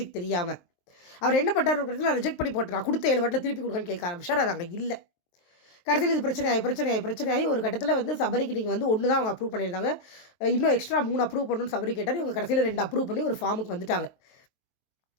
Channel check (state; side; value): late; right; 23 ms